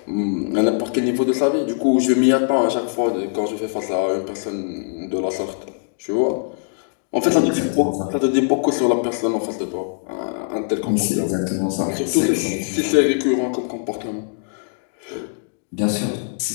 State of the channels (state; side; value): silent; right; digital silence